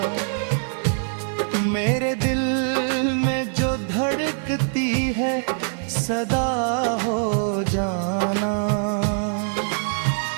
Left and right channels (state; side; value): silent; left; digital silence